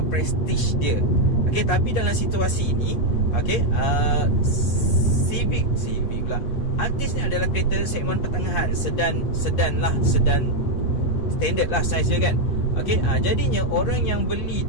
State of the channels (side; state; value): right; late; 8.2 ms